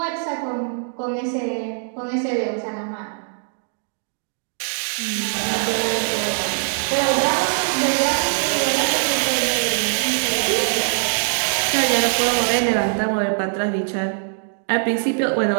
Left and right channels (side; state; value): left; silent; digital silence